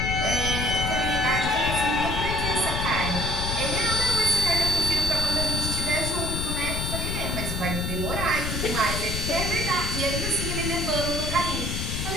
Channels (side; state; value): left; noise; rumble, 3 dB below the sound